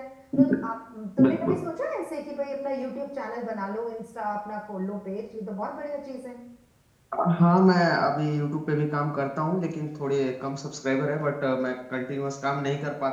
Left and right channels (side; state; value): both; identical; correlation 1.00